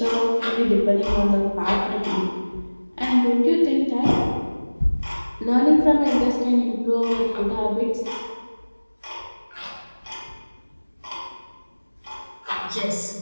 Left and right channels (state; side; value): inverted; both; correlation -1.00